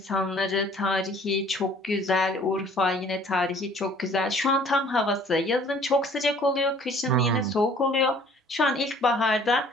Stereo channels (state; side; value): normal; both; correlation 0.54